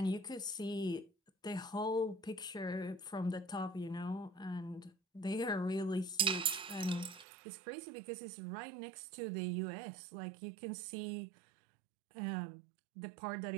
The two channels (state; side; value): drops out; left; at 7.2 s